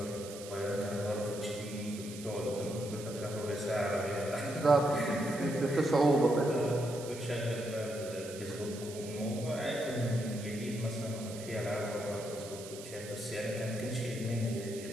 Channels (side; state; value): right; noise; hiss, 14 dB below the sound